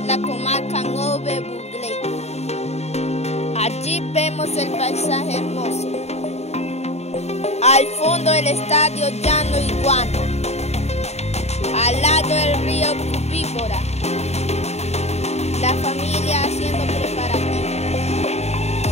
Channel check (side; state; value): right; late; 0.31 ms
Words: la comarca Nove Buglé. Allí vemos el paisaje hermoso. Al fondo el estadio Llano Iguana. Al lado el río Cubíbora. La familia haciendo preparativos.